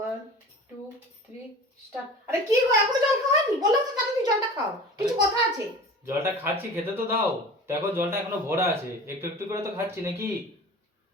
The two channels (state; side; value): normal; both; correlation 0.38